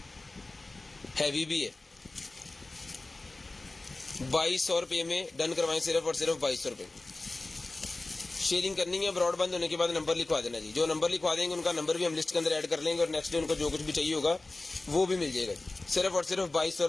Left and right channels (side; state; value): right; quieter; 3.1 dB